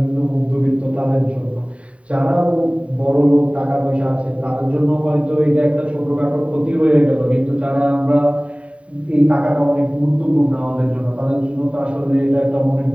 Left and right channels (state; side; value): late; left; 0.064 ms